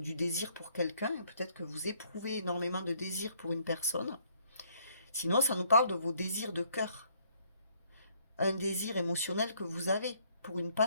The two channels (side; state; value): both; inverted; correlation -0.65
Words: désir pour quelqu'un. Peut-être que vous éprouvez énormément de désir pour une personne. Sinon, ça nous parle de vos désirs de cœur. Un désir émotionnel que vous avez pour une